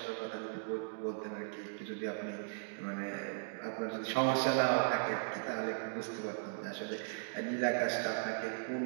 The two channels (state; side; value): silent; left; digital silence